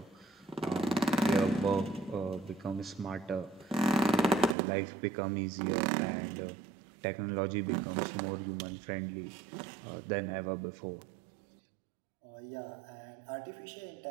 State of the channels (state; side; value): drops out; left; at 4.5 s